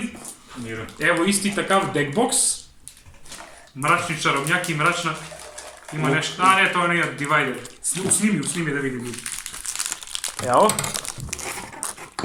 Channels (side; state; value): both; identical; correlation 1.00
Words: Evo isti takav deckbox. Mračni čarobnjak i mračna... Ima nešto, a ne, to je nekak divider. Snimi da vidim ljudi. Evo.